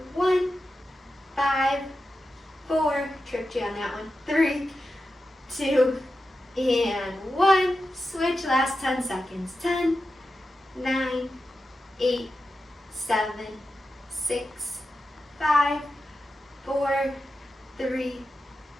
1. 5, 4. Tripped you on that one. 3, 2, and 1. Switch. Last 10 seconds. 10, 9, 8, 7, 6, 5, 4, 3,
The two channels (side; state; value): both; normal; correlation 0.91